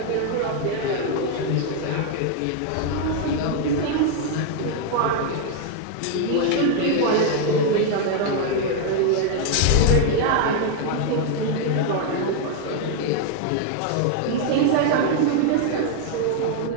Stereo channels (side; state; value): both; different; correlation 0.00